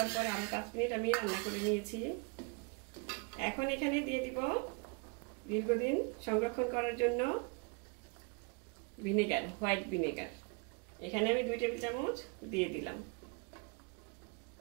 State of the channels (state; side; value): quieter; left; 32.2 dB